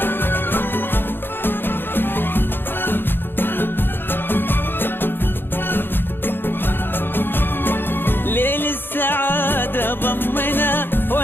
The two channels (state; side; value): late; right; 0.10 ms